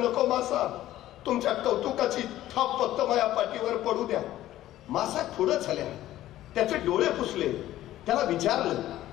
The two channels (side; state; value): right; quieter; 14.1 dB